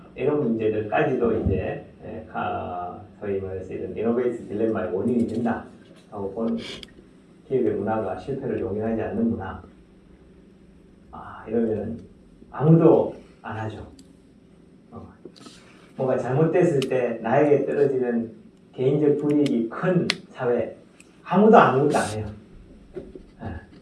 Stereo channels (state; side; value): identical; both; correlation 1.00